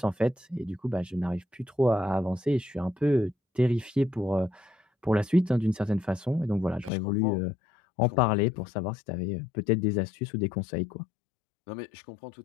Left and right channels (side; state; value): right; drops out; at 6.9 s